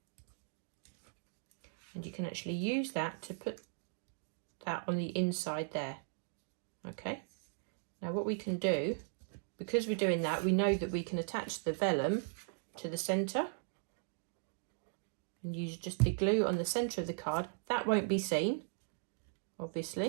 and you can actually use that to put that on the inside there. Okay, now what we can do, because we're doing that, we know that we can attach the vellum to the centre and use just the glue on the centre of the card. That won't be seen,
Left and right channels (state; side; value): silent; left; digital silence